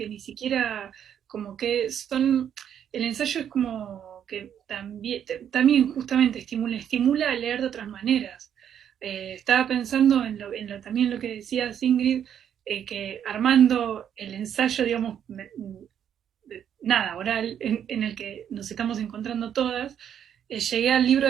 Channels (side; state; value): left; quieter; 9.2 dB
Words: ni siquiera como que son, el ensayo es como que también justamente estimula a leer de otras maneras. Estaba pensando también lo que decía Ingrid, que armando el ensayo, digamos, nada, oral, en el que nos estamos encontrando todas, llegué al libro